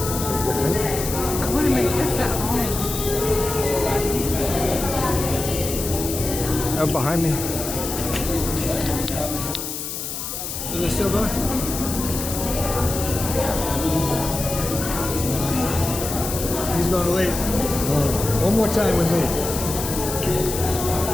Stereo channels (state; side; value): noise; left; hiss, 6 dB below the sound